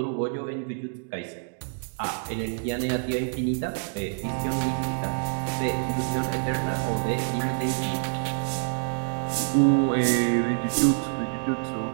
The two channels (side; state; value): left; silent; digital silence